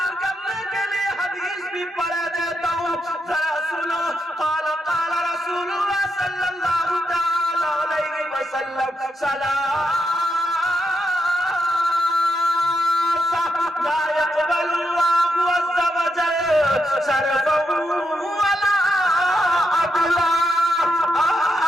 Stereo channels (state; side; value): normal; both; correlation 0.83